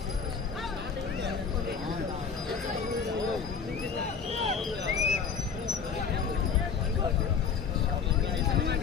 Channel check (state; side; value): quieter; right; 6.2 dB